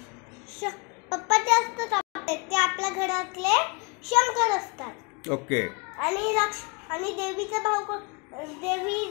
पप्पा ते असतात ते आपल्या घरातले शंकर असतात. ओके. आणि देवीचा भाऊ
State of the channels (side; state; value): right; quieter; 31.5 dB